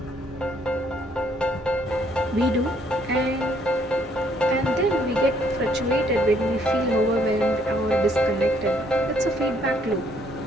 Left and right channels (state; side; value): normal; both; correlation 0.66